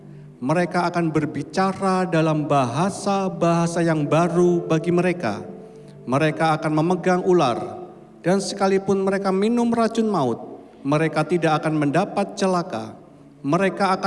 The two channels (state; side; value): identical; both; correlation 1.00